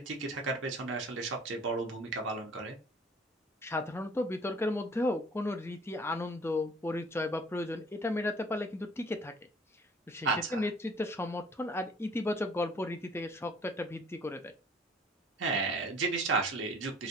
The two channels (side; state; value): both; normal; correlation 0.52